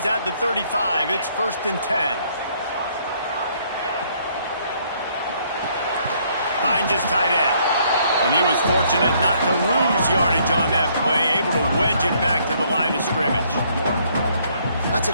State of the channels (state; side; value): inverted; both; correlation -0.66